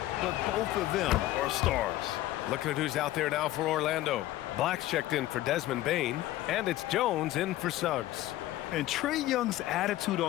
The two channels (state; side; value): quieter; right; 15.3 dB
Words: but both of them are stars. Looking at who's out there now for Orlando. Black's checked in for Desmond Bane, and it's Jones in for Suggs. And Trae Young's attitude